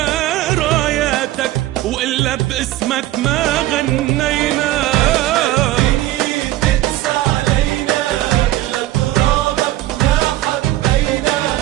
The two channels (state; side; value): quieter; left; 15.5 dB